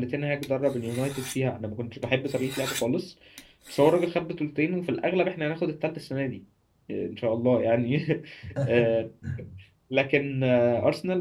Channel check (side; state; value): both; identical; correlation 1.00